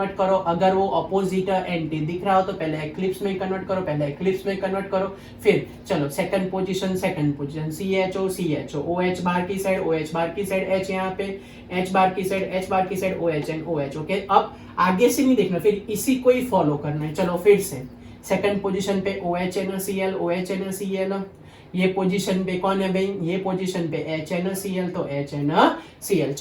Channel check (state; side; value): identical; both; correlation 1.00